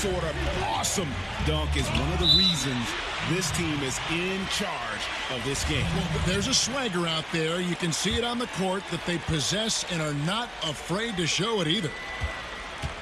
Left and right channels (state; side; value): identical; both; correlation 1.00